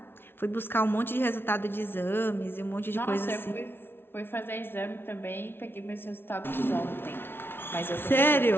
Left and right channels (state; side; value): late; right; 0.11 ms